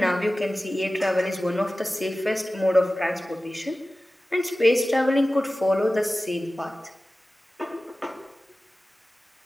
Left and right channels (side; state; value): both; normal; correlation 0.96